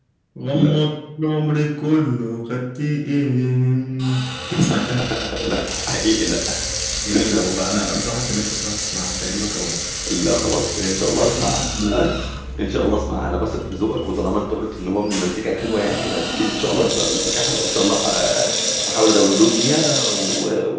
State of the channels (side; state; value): both; identical; correlation 1.00